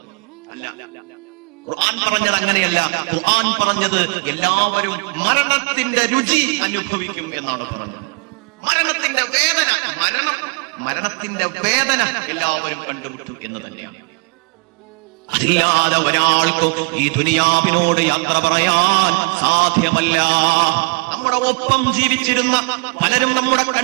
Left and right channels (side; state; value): left; quieter; 30.2 dB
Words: അല്ല. ഖുർആൻ പറഞ്ഞത് അങ്ങനെയല്ല. ഖുർആൻ പറഞ്ഞത് എല്ലാവരും മരണത്തിന്റെ രുചി അനുഭവിക്കും എന്നാണ് പറഞ്ഞത്. മരണത്തിന്റെ വേദന എല്ലാവരും കണ്ടുമുട്ടും എന്ന് തന്നെയാണ്. അതില്ലാതെ ഒരാൾക്കും ഈ ദുനിയാവിനോട് യാത്ര പറയാൻ സാധ്യമല്ല. നമ്മുടെ ഒപ്പം ജീവിച്ചിരുന്ന പലരും നമ്മുടെ